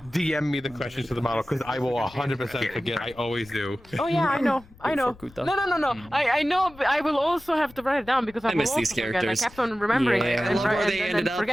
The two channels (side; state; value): left; noise; rumble, 24 dB below the sound